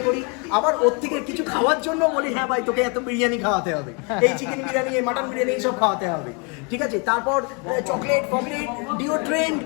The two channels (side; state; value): right; quieter; 33.6 dB